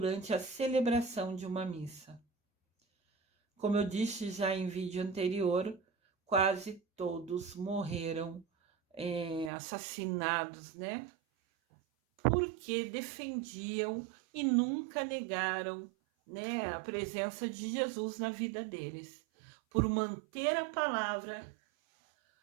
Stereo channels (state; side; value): drops out; left; at 9.5 s